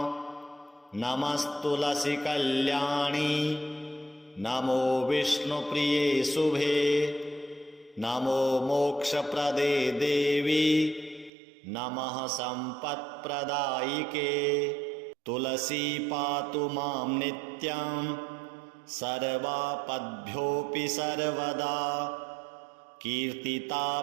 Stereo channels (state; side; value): drops out; left; at 11.3 s